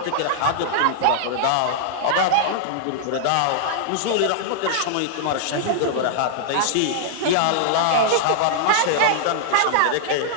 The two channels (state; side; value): different; both; correlation -0.01